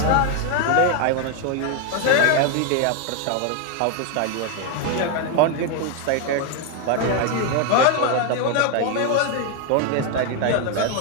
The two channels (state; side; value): different; both; correlation 0.01